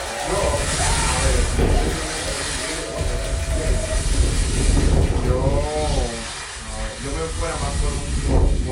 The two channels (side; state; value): both; identical; correlation 1.00